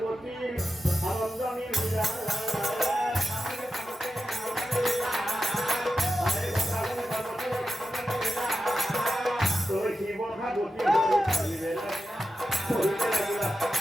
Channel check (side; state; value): both; normal; correlation 0.91